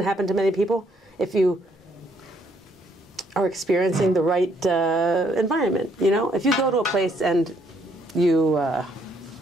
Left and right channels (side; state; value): both; normal; correlation 0.69